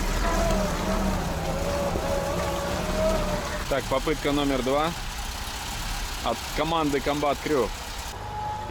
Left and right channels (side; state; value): both; identical; correlation 1.00